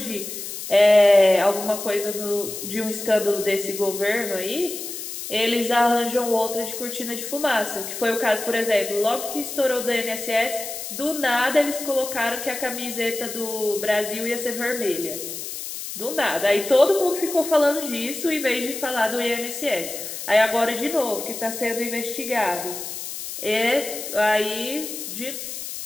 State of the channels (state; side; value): noise; left; hiss, 8 dB below the sound